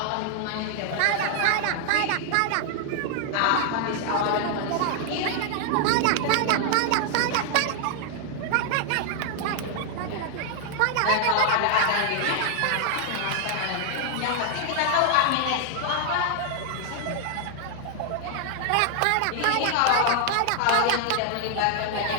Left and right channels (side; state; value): both; different; correlation 0.00